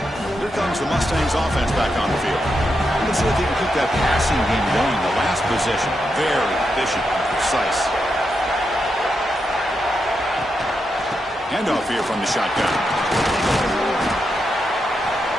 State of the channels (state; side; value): normal; both; correlation 0.84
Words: Here comes the Mustangs offense back on the field. Let's see if they can keep that passing game going. The last possession, very efficient and precise. Handoff here from the shotgun.